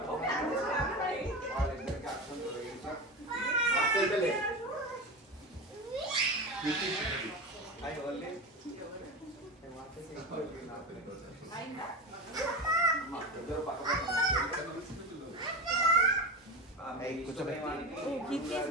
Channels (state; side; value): normal; both; correlation 0.24